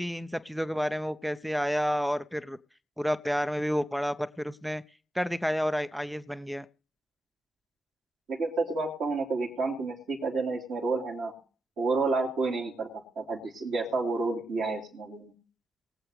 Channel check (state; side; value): normal; both; correlation 0.88